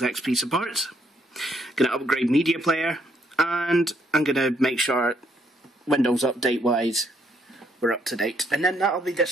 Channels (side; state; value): both; normal; correlation 0.71